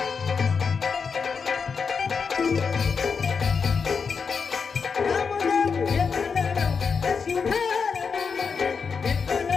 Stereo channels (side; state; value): right; quieter; 5.6 dB